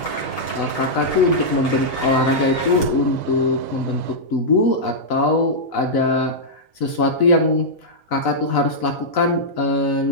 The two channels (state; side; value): late; right; 4.0 ms